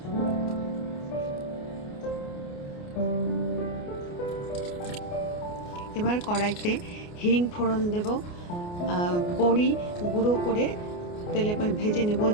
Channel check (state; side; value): late; right; 29 ms